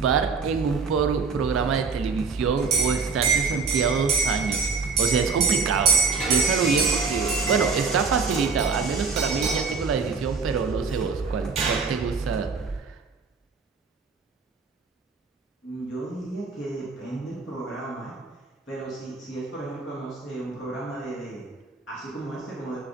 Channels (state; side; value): quieter; left; 4.8 dB